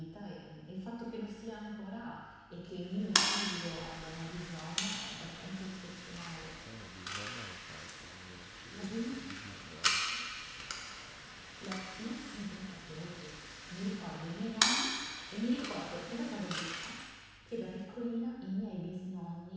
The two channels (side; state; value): both; identical; correlation 1.00